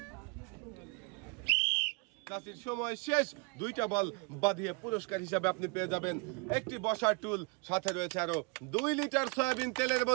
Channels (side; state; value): left; quieter; 31.0 dB